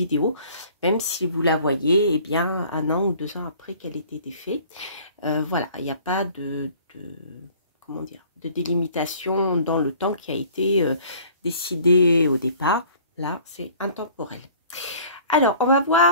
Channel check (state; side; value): inverted; both; correlation -0.51